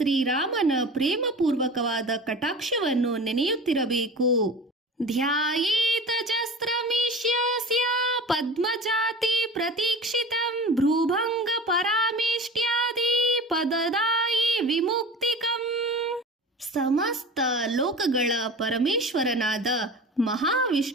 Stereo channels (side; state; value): both; normal; correlation 0.36